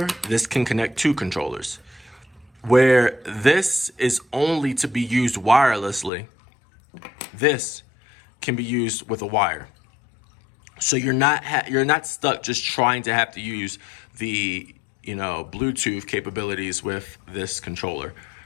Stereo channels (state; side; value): drops out; right; at 6.1 s